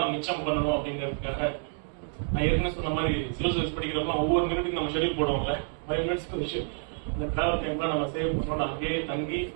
மிச்சம் பண்ணணும் அப்படிங்கிறதுக்காக நான் ஏற்கனவே சொன்ன மாதிரி சிவில் சர்வீஸ் படிக்கிறப்ப ஒவ்வொரு மினிட்டுக்கு நம்ம ஷெடியூல் போடுவோம்ல, 5 மினிட்ஸ்க்கு ஒரு ஷெடியூல். அந்த டிராவல் டைம்லாம் நம்ம சேவ் பண்ணணும், அங்கேயே தங்கி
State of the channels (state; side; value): silent; left; 57 dB below the other